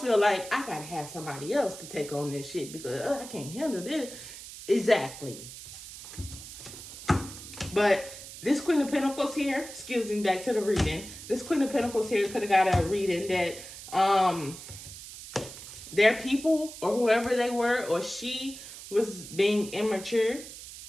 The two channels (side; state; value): right; noise; hiss, 13 dB below the sound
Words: like I gotta have somebody else to take on this shit because I can't handle this. Exactly. But this Queen of Pentacles here, excuse me, back to the reading. This Queen of Pentacles here could have got a reading that their people or whoever they were or she was being immature